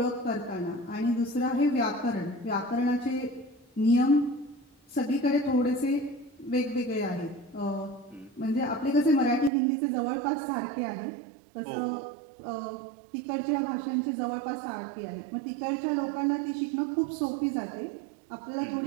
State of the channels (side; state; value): left; drops out; at 9.5 s